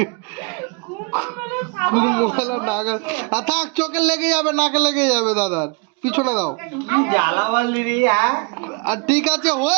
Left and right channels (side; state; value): left; quieter; 32.0 dB